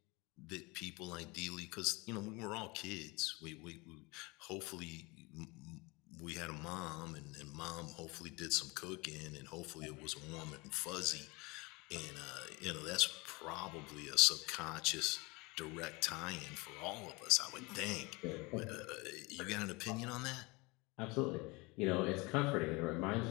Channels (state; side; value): quieter; right; 25.5 dB